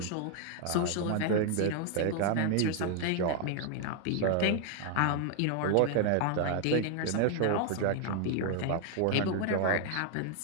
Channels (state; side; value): different; both; correlation 0.00